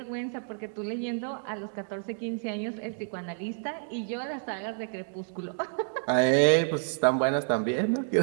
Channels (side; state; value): left; silent; digital silence